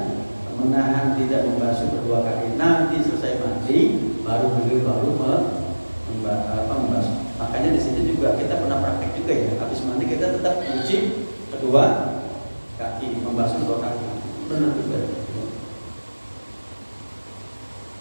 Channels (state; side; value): inverted; both; correlation -1.00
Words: menahan tidak membasuh kedua kaki. Nanti selesai mandi baru beliau membasuh. Makanya di sini juga kita pernah praktek juga ya. Habis mandi kita tetap cuci kedua kaki, membasuh kedua kaki. Benar juga.